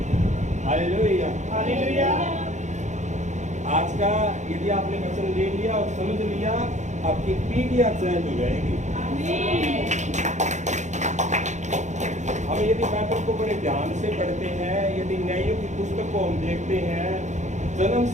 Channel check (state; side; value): late; left; 0.34 ms